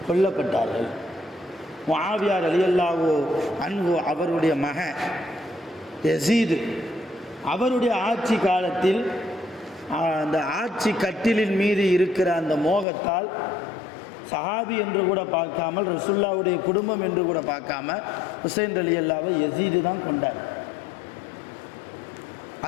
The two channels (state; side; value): drops out; right; at 12.9 s